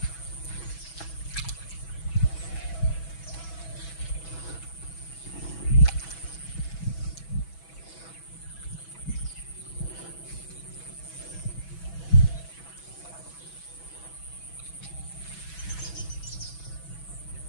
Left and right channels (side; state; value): right; late; 6.1 ms